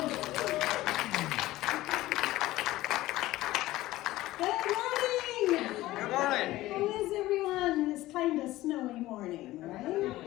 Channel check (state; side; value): quieter; right; 16.8 dB